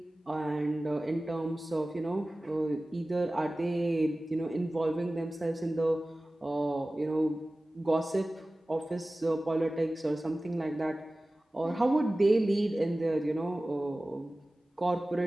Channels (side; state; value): both; normal; correlation 0.97